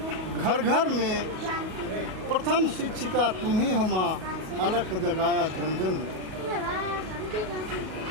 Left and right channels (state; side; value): late; left; 38 ms